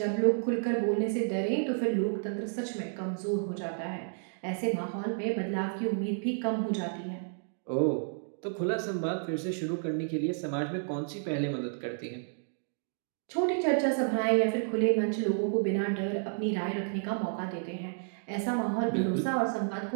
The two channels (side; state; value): left; silent; digital silence